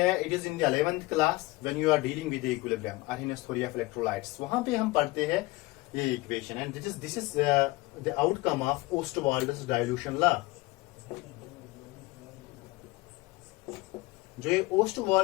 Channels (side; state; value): right; quieter; 21.4 dB